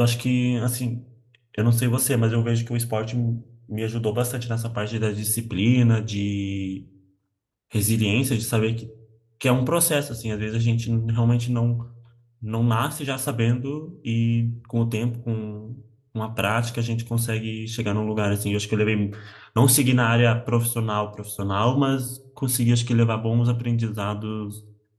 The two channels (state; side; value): identical; both; correlation 1.00